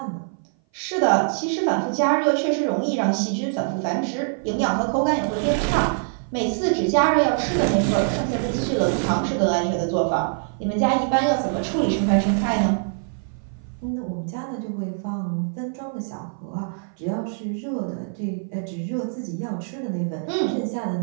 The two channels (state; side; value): silent; left; 58 dB below the other